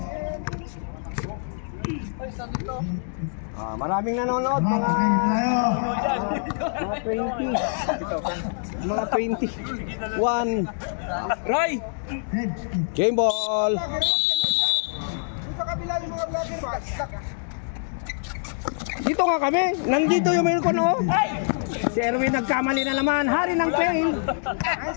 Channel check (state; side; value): silent; right; digital silence